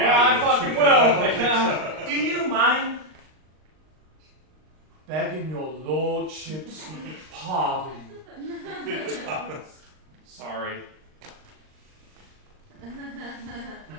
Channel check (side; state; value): left; late; 39 ms